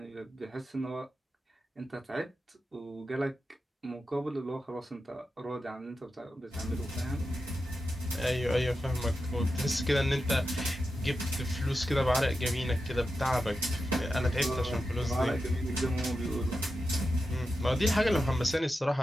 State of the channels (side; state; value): both; normal; correlation 0.90